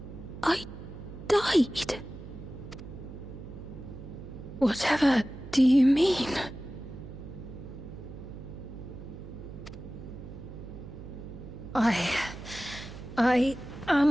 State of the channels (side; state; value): right; noise; hum, 12 dB below the sound